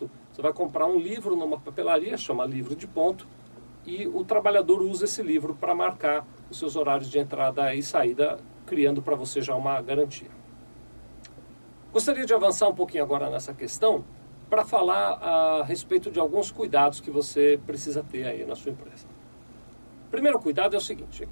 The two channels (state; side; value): inverted; both; correlation -1.00